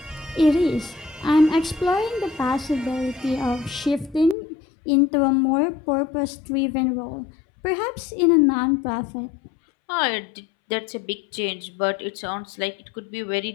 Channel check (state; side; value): drops out; right; at 4.4 s